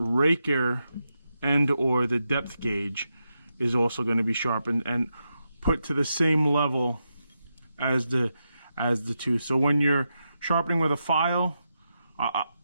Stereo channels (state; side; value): inverted; both; correlation -0.86